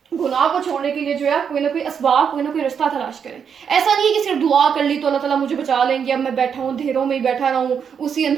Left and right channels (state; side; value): quieter; left; 7.2 dB